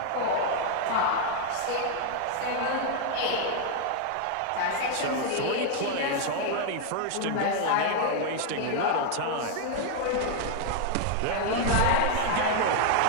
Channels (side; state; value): both; different; correlation 0.00